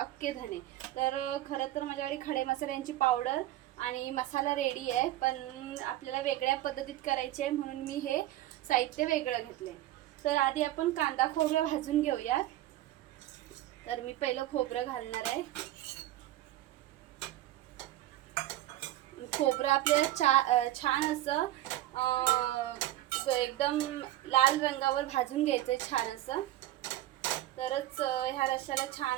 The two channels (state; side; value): quieter; left; 14.7 dB